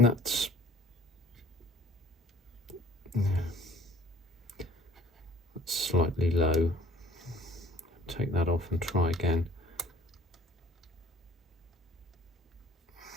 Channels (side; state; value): both; normal; correlation 0.52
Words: That's slightly low. Take that off and try again.